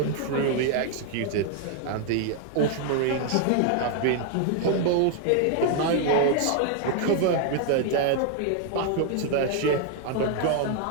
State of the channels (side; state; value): both; different; correlation 0.00